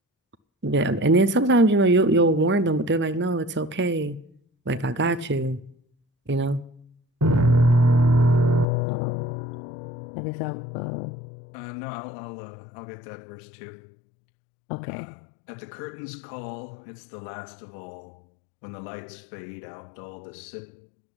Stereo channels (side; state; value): right; drops out; at 8.7 s